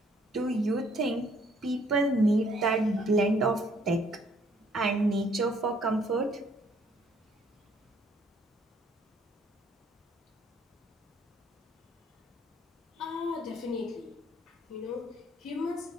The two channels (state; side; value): normal; both; correlation 0.64